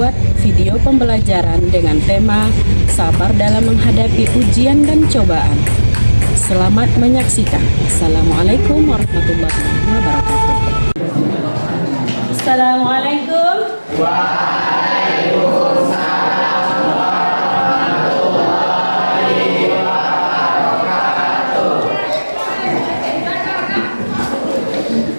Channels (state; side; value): inverted; both; correlation -1.00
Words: video pembelajaran dengan tema sabar dalam menghadapi ujian dan cobaan. Selamat menyaksikan. Assalamualaikum warahmatullahi wabarakatuh. Assalamualaikum. Waalaikumsalam warahmatullahi wabarakatuh.